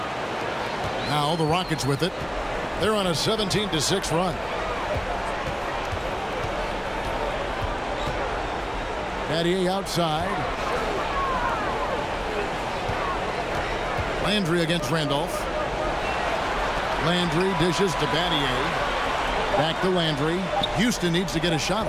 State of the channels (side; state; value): both; identical; correlation 1.00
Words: Now the Rockets with it. They're on a 17-6 run. Battier outside. Landry against Randolph. Landry dishes to Battier. Back to Landry. Houston needs to get a shot